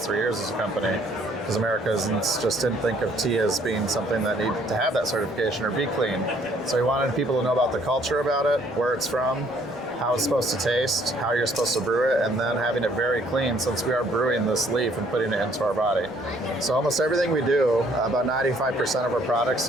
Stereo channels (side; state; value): left; noise; rumble, 29 dB below the sound